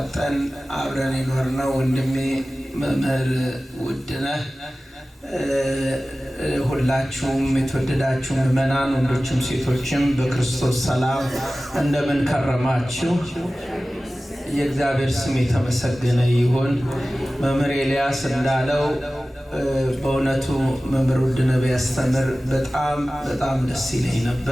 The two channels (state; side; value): normal; both; correlation 0.96